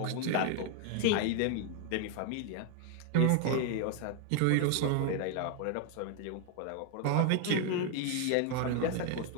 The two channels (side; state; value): both; different; correlation 0.00